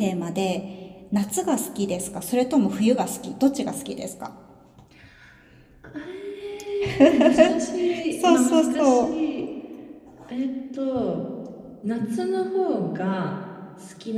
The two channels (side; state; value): both; identical; correlation 1.00